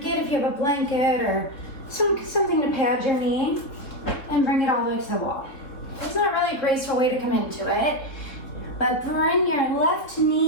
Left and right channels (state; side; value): late; right; 3.7 ms